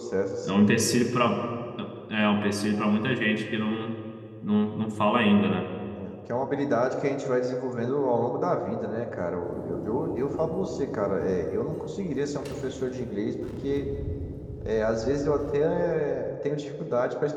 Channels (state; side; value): identical; both; correlation 1.00